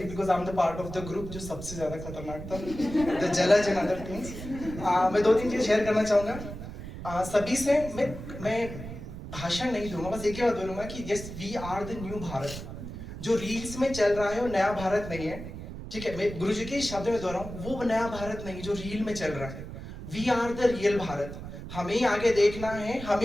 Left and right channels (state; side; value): noise; right; rumble, 10 dB below the sound